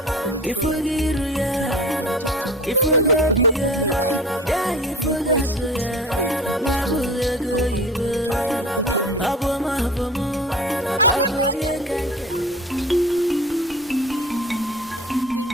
It's alright, Mom. Don't worry, I will talk to her. No problem. I'm impressed. It's okay. Just go home. I'll talk to her. Okay, Nne. The ladies of the beggar, they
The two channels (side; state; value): both; normal; correlation 0.38